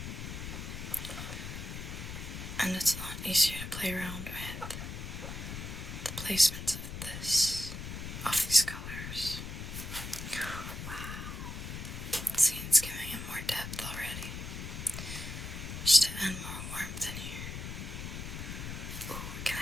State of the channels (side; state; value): left; noise; rumble, 7 dB below the sound